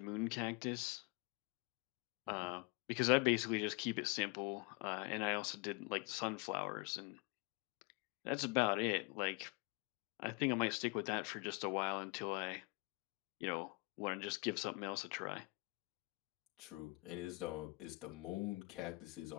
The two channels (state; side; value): quieter; right; 27.6 dB